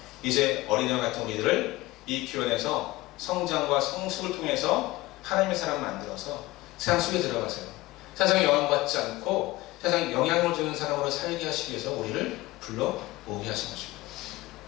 이제 어린아이 같은 우리들을 이 교회에서 성장과 성숙을 통해서 하나님의 사람 만들어서 세상 속에 들어가세요. 세상에 영향받지 않고 세상에 영향을 주는 사람으로 살게 하시기 위해서 우리를 불러 모으게 하신 것입니다.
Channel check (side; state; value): right; quieter; 19.4 dB